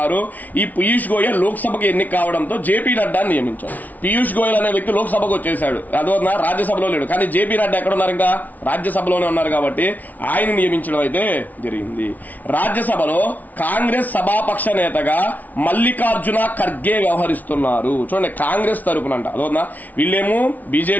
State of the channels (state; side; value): late; right; 0.077 ms